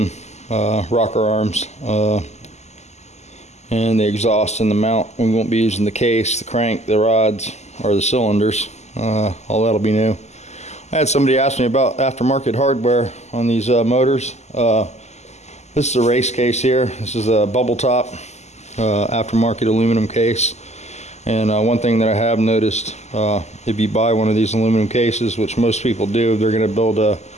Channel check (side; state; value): right; late; 0.33 ms